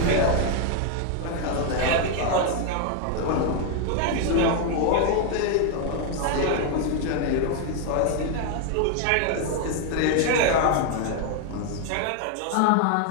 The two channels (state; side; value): different; both; correlation 0.00